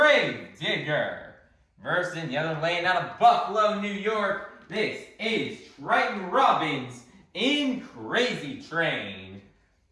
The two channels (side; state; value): both; identical; correlation 1.00